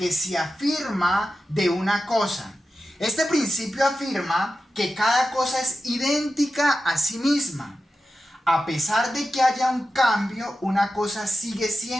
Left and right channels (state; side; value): normal; both; correlation 0.92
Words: se afirma de una cosa. Este principio afirma que cada cosa es idéntica a sí misma. A pesar de que haya un cambio, una cosa sigue